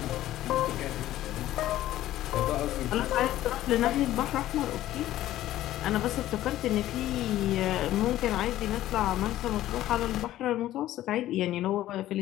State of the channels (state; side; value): quieter; right; 14.1 dB